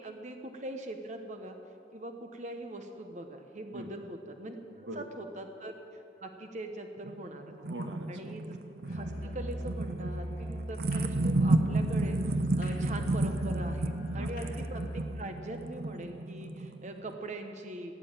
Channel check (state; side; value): normal; both; correlation 0.76